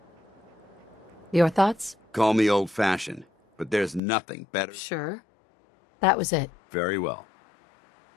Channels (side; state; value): right; drops out; at 4.0 s